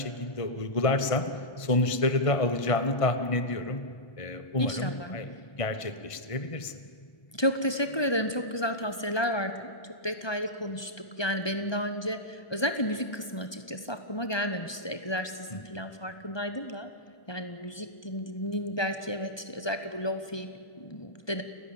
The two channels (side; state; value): right; late; 1.2 ms